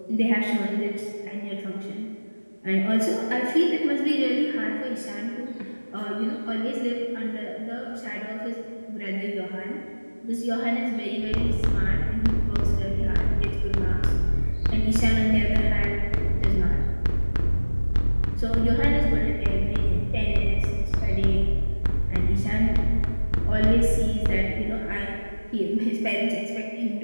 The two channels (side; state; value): both; inverted; correlation -1.00